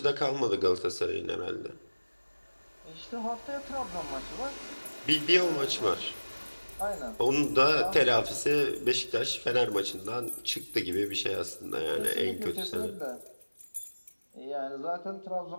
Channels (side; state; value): both; inverted; correlation -1.00